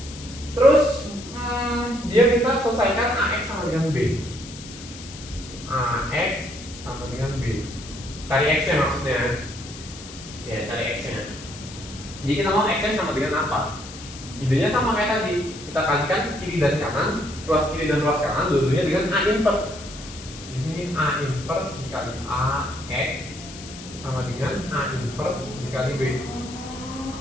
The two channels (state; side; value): noise; left; hiss, 15 dB below the sound